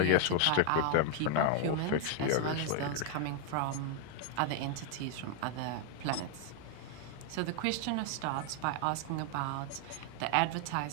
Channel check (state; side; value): different; both; correlation 0.00